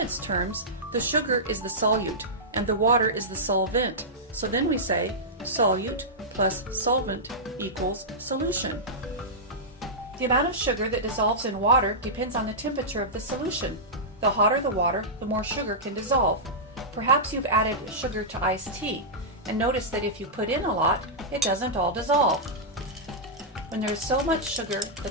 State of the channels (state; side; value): normal; both; correlation -0.12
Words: terms, the sugar is the solute and the water is the solvent. So then we say solute plus solvent equals solution. The amount of sugar that dissolves in water depends on the temperature of the solution. The hotter the water, the more sugar can dissolve. Perhaps you've added sugar to iced tea and noticed that if you put in a lot, it doesn't all dissolve. When there is so much sugar